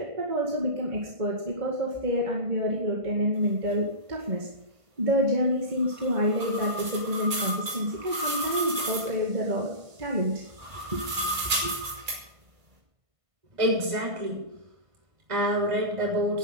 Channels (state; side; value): late; left; 1.5 ms